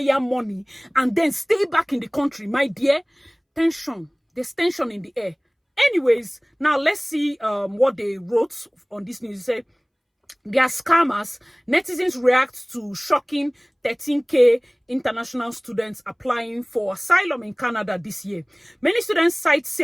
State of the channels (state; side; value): identical; both; correlation 1.00